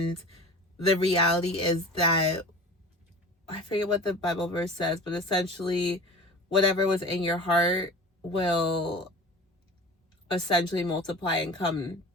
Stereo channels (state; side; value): normal; both; correlation 0.37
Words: the reality is that, I forget what the Bible verse says, but essentially whatever was in your heart will essentially multiply and come